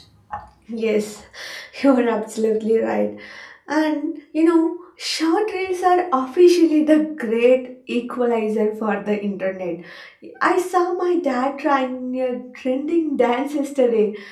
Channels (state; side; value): identical; both; correlation 1.00